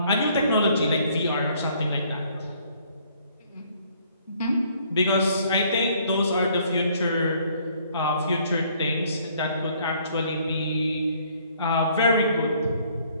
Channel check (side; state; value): both; inverted; correlation -0.62